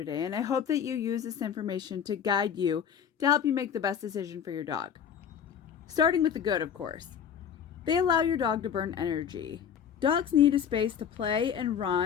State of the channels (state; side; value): quieter; right; 8.1 dB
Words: and I hope that you use this information to guide you to help you make the best decision for your dog. Starting with the good, of course. They allow your dog to burn energy. Dogs need a space to play and